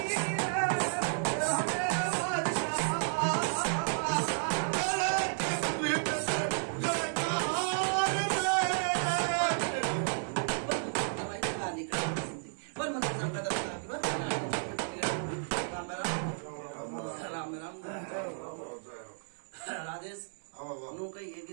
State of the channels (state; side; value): silent; left; 56 dB below the other